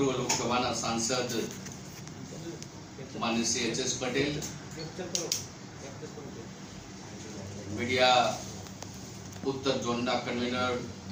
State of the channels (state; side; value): identical; both; correlation 1.00